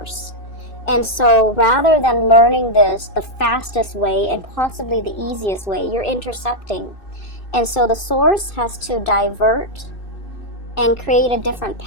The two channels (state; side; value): late; right; 2.6 ms